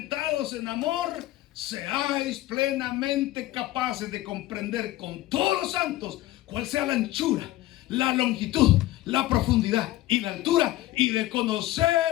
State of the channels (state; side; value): quieter; right; 16.2 dB